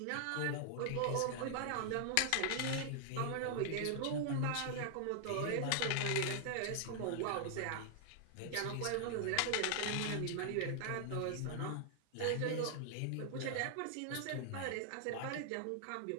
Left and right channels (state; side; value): different; both; correlation -0.01